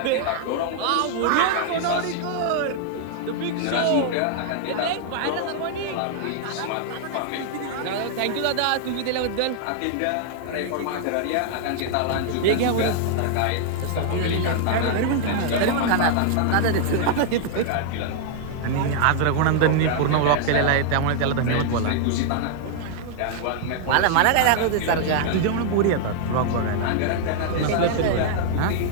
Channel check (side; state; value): both; different; correlation -0.01